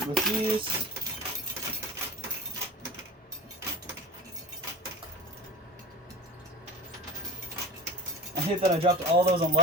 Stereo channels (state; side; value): normal; both; correlation 0.32